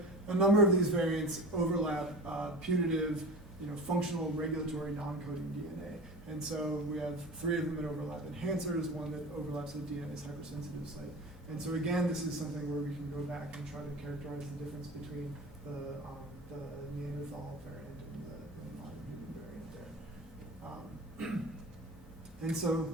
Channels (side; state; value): right; noise; hum, 21 dB below the sound